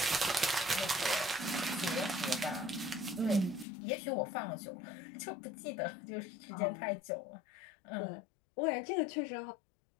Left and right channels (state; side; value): drops out; right; at 3.7 s